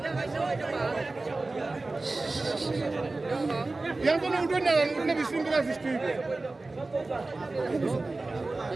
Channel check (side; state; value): left; quieter; 3.3 dB